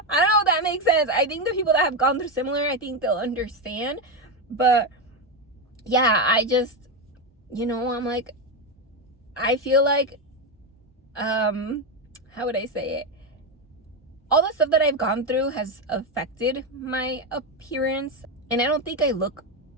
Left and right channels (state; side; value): normal; both; correlation 0.10